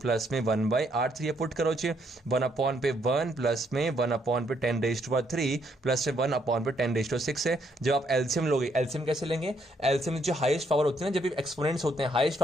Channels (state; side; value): normal; both; correlation 0.72